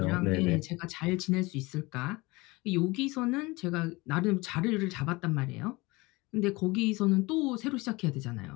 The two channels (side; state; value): right; quieter; 23.2 dB